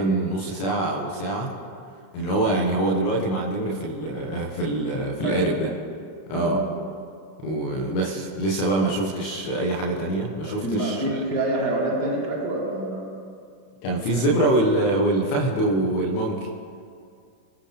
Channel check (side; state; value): right; late; 31 ms